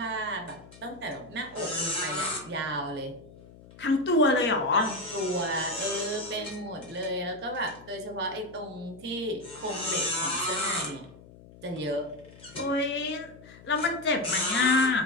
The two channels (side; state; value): left; noise; hum, 20 dB below the sound